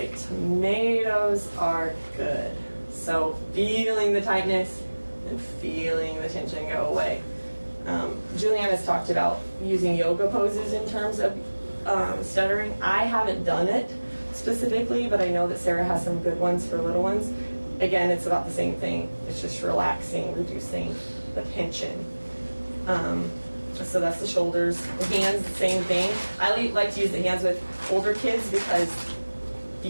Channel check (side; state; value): both; inverted; correlation -1.00